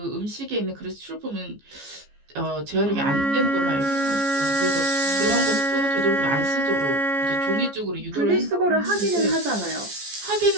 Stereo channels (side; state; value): left; late; 14 ms